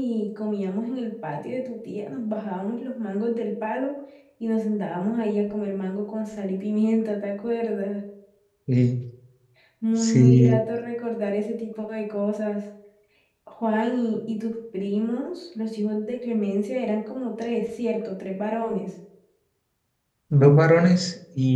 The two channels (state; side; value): identical; both; correlation 1.00